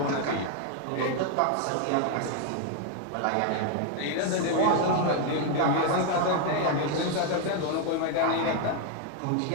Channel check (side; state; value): both; different; correlation 0.00